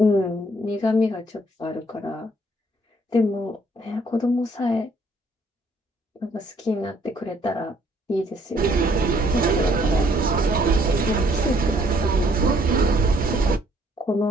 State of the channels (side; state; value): both; normal; correlation 0.65